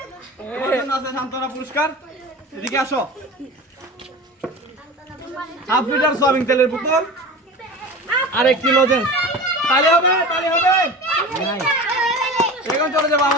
তোমার জন্য আছে সান্ত্বনা পুরস্কার। এদিকে আসো। হাফ লিটার সয়াবিন তেলের বোতল আর 1 কিলো লজেন্স। তালি হবে, তালি হবে। এখন চলে যাবো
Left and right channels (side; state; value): both; normal; correlation 0.33